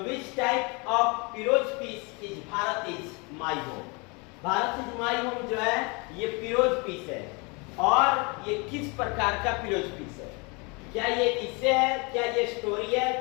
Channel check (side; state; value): right; quieter; 29.7 dB